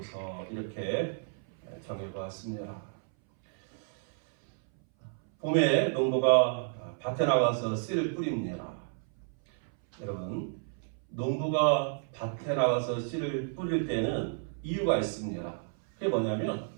이렇게 정해보았습니다. 봄에 농부가 밭에 나가서 씨를 뿌립니다. 여러분, 농부가 밭에 나가서 씨를 뿌릴 때는 이유가 있습니다. 그게 뭐냐면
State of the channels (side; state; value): left; silent; 57 dB below the other